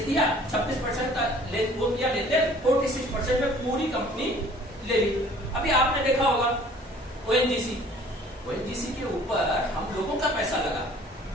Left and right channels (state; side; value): normal; both; correlation 0.53